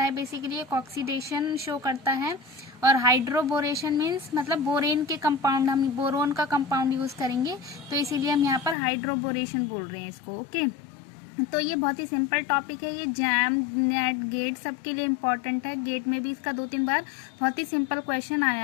है, basically एक ऑक्सीडेशन शो करता है. और हाइड्रोबोरेशन मीन्स मतलब बोरेन के कंपाउंड, हम बोरोन का कंपाउंड यूज करेंगे, तो इसीलिए हम यहाँ पर हाइड्रोबोरेशन बोल रहे हैं इसको. ओके तो ये बहुत ही सिंपल टॉपिक है. ये जैम, नेट, गेट सबके लिए इम्पोर्टेंट है. गेट में भी इसका 2-3 बार बहुत ही सिंपल क्वेश्चन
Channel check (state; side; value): drops out; right; at 8.8 s